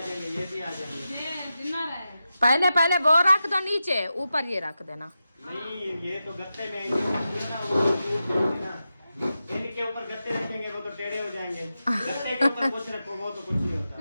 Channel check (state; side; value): inverted; both; correlation -0.90